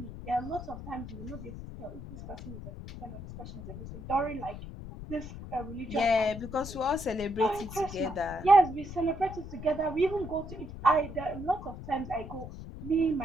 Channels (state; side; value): noise; left; rumble, 11 dB below the sound